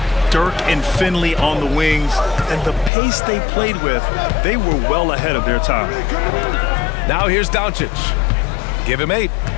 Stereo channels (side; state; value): right; drops out; at 2.9 s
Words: Dirk and Finley on the wings, and the pace they played with, they were well ahead of their time. Now here's Doncic. Give him 8.